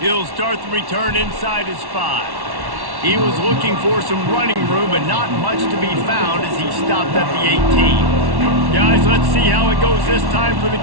He'll start the return inside his 5. He was looking for some running room, but not much to be found as he stopped at the 18. Guys, let's see how it goes this time for the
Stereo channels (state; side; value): late; left; 1.1 ms